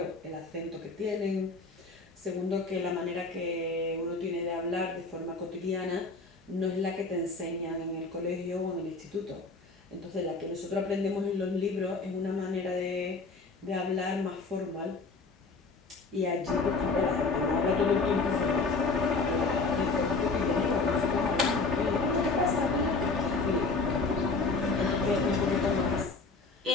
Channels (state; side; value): quieter; right; 3.9 dB